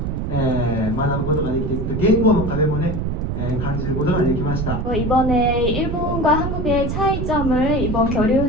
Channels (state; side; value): noise; right; rumble, 2 dB below the sound